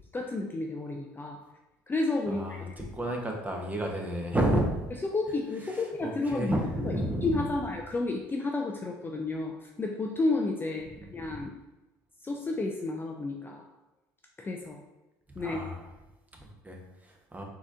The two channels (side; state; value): both; normal; correlation 0.72